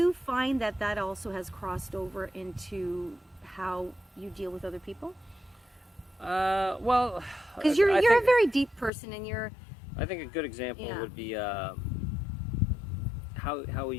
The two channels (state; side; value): drops out; right; at 8.9 s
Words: find that also has crossed over into how you deal with other people? Well, because you're a very deep person, and you're... I think a good example would be how